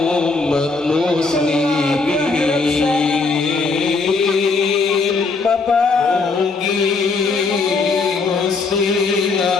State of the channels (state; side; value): quieter; right; 4.2 dB